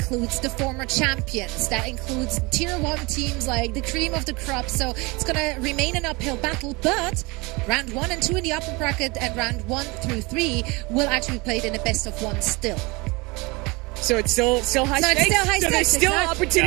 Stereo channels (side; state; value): left; quieter; 25.7 dB